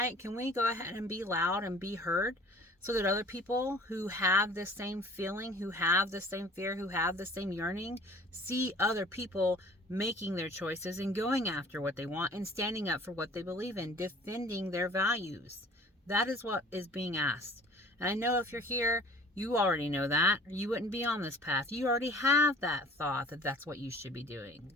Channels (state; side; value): normal; both; correlation 0.49